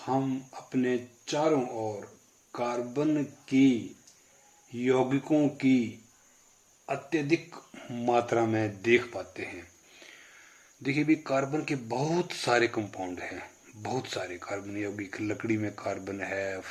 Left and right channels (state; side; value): identical; both; correlation 1.00